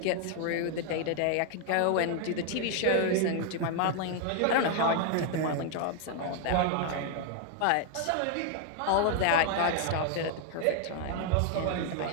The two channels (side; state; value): both; different; correlation 0.00